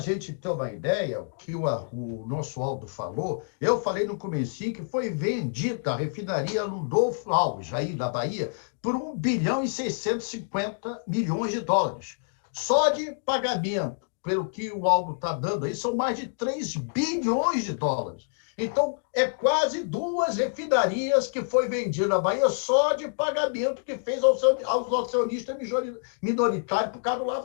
gente ter uma ideia, o que o nosso Aldo falou, eu falei no comecinho que foi vendida a refinaria Ludolfo Alves, aí na Bahia, por 1 bilhão e 650 milhões de dólares. Só de pagamento, pelo que o Aldo está dando aí, são mais de 3 bilhões de dólares. Então, é quase 2 refinarias que foi vendida na Bahia só de pagamento que fez aos acionistas minoritários por causa do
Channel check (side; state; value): right; silent; digital silence